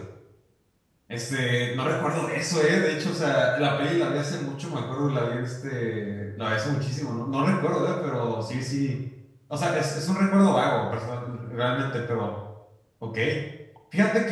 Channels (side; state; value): both; identical; correlation 1.00